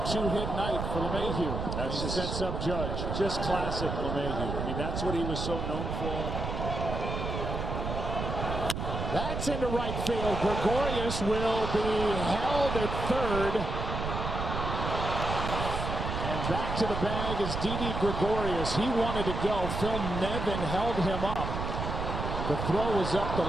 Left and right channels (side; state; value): right; noise; rumble, 3 dB below the sound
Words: night for LeMahieu. That's just sets up Judge. Just classic LeMahieu. I mean, that's what he was so known for. That's into right field. Gregorius will be held at third. And back to the bag is Didi Gregorius. He wanted to go. Phil Nevin held him up. The throw was up the